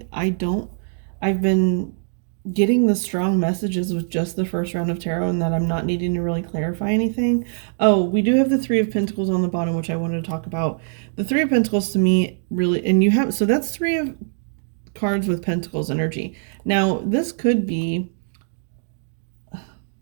I've been getting the strong messages with just the first round of tarot, and that I'm not needing to really clarify anything. Oh, we do have the Three of Pentacles on the bottom, which I wanted to talk about. The Three of Pentacles to me really, and you have, so that's three of cards with Pentacles energy. Now, this could be,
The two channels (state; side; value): silent; left; digital silence